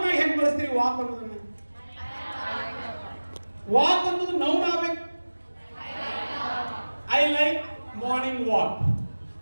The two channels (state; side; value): inverted; both; correlation -1.00